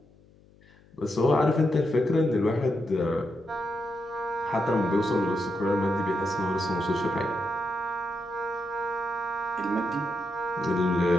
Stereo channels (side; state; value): left; noise; hum, 28 dB below the sound